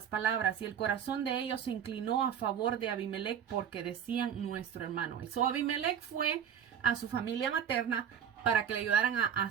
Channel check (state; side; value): quieter; left; 8.4 dB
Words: palabras, y el corazón de ellos se inclinó a favor de Abimelech porque decían nuestro hermano. So Abimelech fue a su familia materna para que le ayudaran a